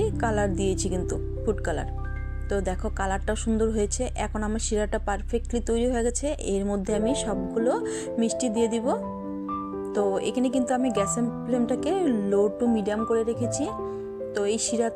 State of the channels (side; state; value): both; identical; correlation 1.00